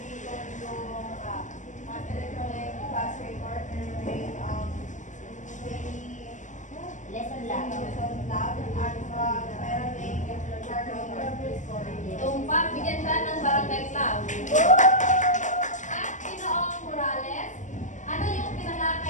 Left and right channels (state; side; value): late; right; 0.36 ms